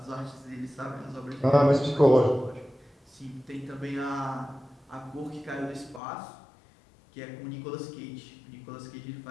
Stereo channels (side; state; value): right; drops out; at 6.0 s